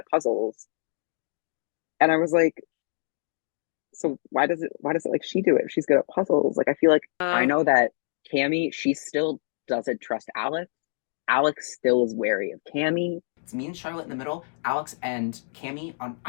puzzles. And I was like, so why does it like she do it if she's good at puzzles? Like I feel like I know that Cammy, she still doesn't trust Alex. Alex still is wary of Cammy. It's me and Charlotte in the middle, Alex and Cammy on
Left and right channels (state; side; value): silent; right; digital silence